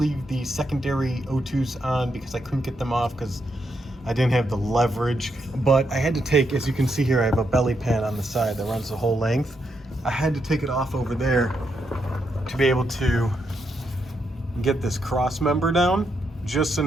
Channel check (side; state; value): both; normal; correlation 0.81